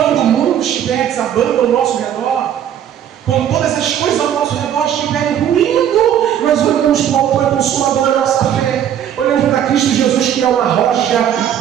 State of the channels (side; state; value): left; quieter; 9.9 dB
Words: o mundo estiver desabando ao nosso redor, quando todas as coisas ao nosso redor estiverem ruindo, nós olhamos para o autor e consumador da nossa fé, olhamos para Cristo Jesus, que é uma rocha